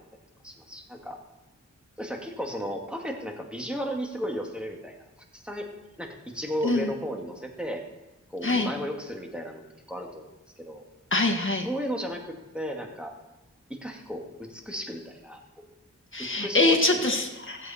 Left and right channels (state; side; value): normal; both; correlation 0.37